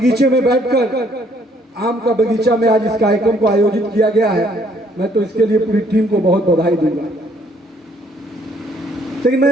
में बैठकर, आम का बगीचा में आज इस कार्यक्रम को आयोजित किया गया है, मैं तो इसके लिए पूरी टीम को बहुत बधाई दूंगा। लेकिन मैं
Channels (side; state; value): both; normal; correlation 0.64